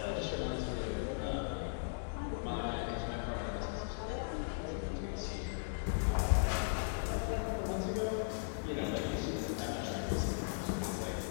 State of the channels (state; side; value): silent; right; digital silence